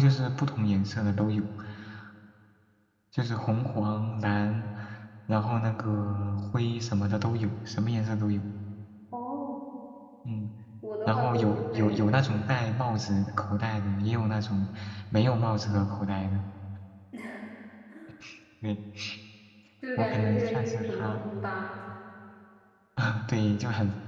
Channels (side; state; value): both; identical; correlation 1.00